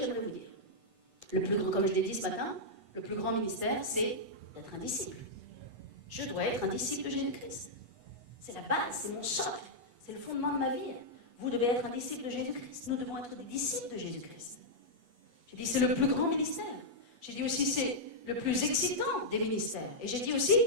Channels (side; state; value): left; late; 8.2 ms